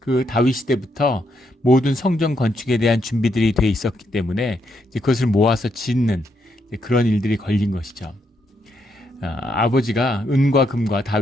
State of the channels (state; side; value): normal; both; correlation 0.78